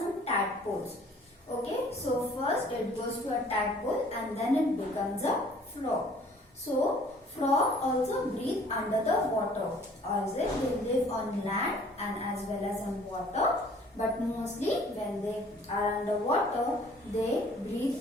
tadpoles. Okay, so first it goes to a tadpole and then it becomes a frog. So, frog also breathe under the water, or is it they live on land and as well as on water, but mostly when they are underwater they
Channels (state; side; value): normal; both; correlation 0.55